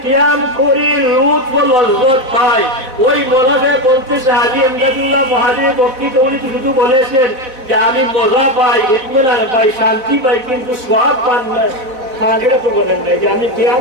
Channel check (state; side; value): late; left; 4.0 ms